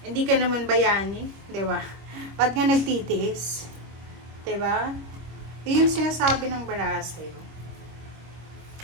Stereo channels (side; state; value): left; late; 25 ms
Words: Hindi ka naman bayani, di ba? Ba't nga nagtitiis? di ba? Yung sinasabi ng baraha sa'yo.